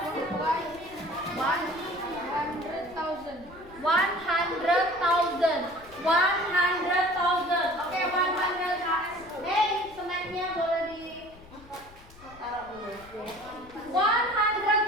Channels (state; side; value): noise; left; rumble, 22 dB below the sound